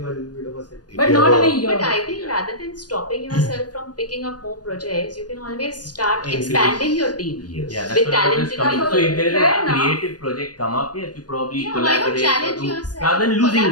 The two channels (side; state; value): right; late; 0.69 ms